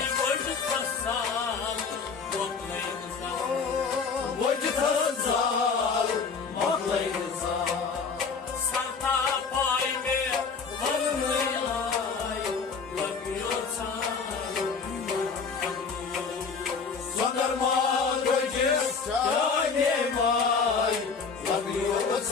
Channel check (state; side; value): quieter; right; 5.3 dB